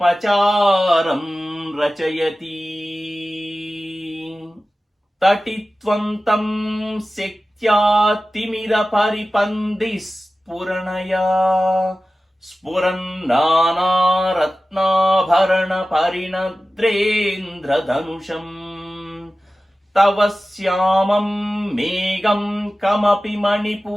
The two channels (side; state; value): both; normal; correlation 0.95